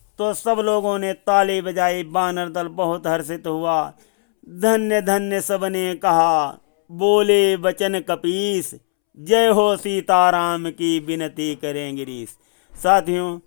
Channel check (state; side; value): silent; right; 66 dB below the other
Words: तो सब लोगों ने ताले बजाए, बानर दल बहुत हर्षित हुआ। धन्य धन्य सबने कहा, बोले वचन कपीस, जय हो सीताराम की विनती करें गिरीश। साथियों,